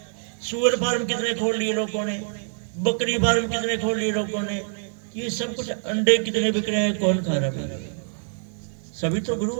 सुअर फार्म कितने खोल लिए लोगों ने, बकरी फार्म कितने खोल लिए लोगों ने। ये सब कुछ, अंडे कितने बिक रहे हैं, कौन खा रहा है? सभी तो गुरु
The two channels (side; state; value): left; silent; 62 dB below the other